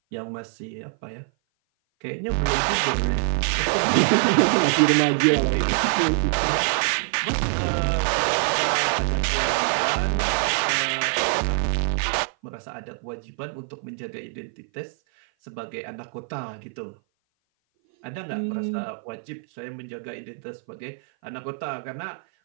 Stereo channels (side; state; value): left; silent; 57 dB below the other